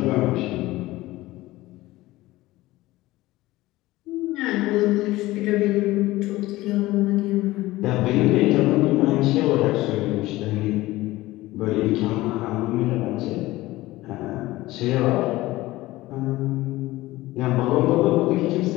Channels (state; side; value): quieter; right; 18.1 dB